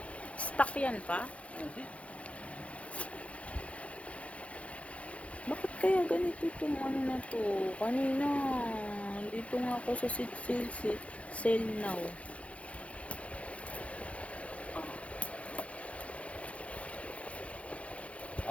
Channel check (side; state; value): right; late; 0.063 ms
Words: Stock yan pa? Hindi. Bakit kaya ganito itong ano na to? Kanina, dito nga ako sa sale now.